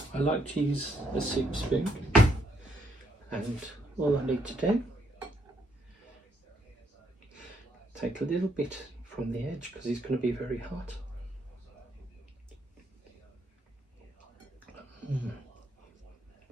like to use a soup spoon, and all I need to do, take a little bit from the edge because it's going to be very hot.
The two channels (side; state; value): both; normal; correlation 0.74